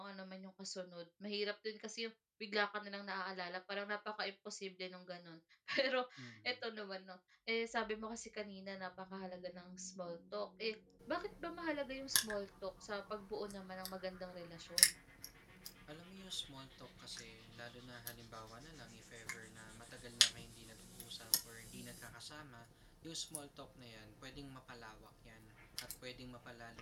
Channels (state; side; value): identical; both; correlation 1.00